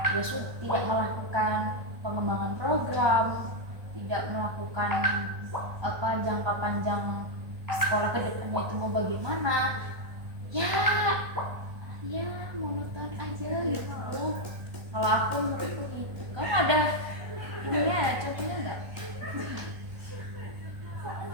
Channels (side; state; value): left; late; 1.5 ms